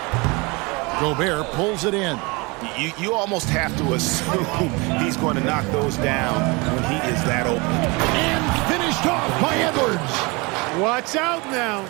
Gobert pulls it in. You almost have to assume he's going to knock those down when he is that open. And finished off by Edwards. Watch out now.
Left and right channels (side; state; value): left; quieter; 27.1 dB